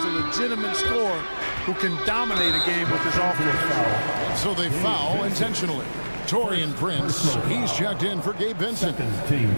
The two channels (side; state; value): both; inverted; correlation -1.00